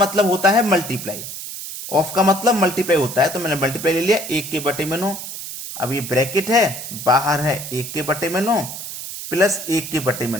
होता है मल्टीप्लाई, ऑफ का मतलब मल्टीप्लाई होता है, तो मैंने मल्टीप्लाई ले लिया 1/9। अब ये ब्रैकेट है, बाहर है 1/9 प्लस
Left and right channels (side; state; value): right; noise; hiss, 9 dB below the sound